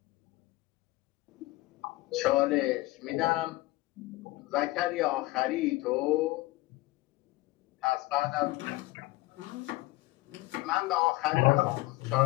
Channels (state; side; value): quieter; right; 19.9 dB